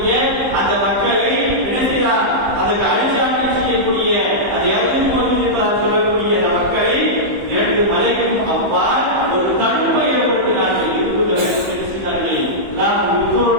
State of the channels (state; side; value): late; left; 15 ms